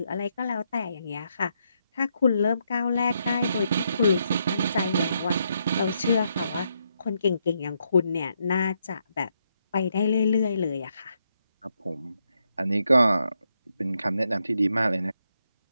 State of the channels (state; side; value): inverted; both; correlation -0.79